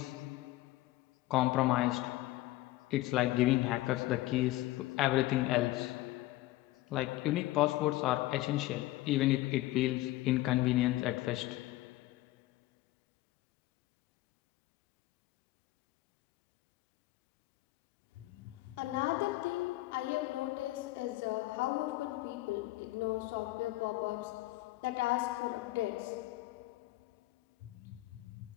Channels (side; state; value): right; quieter; 17.5 dB